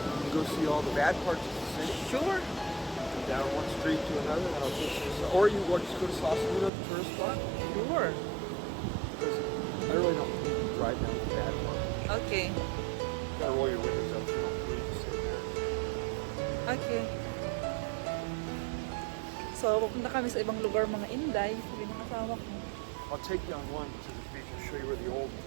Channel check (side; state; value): left; drops out; at 6.7 s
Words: go see all the bad parts of the city. Sure. Go down one street to another, and I'll take you. Or you want to just go to Sausalito, the tourist spot. Sure. Because I really don't need to drive down the bad part. Okay. You gotta roll your windows up so you don't need to sit there. Okay. So, pupunta kami sa ibang lugar mga Inday. Sabi ng asawa ko. I'll take you on one to the beach and show you where the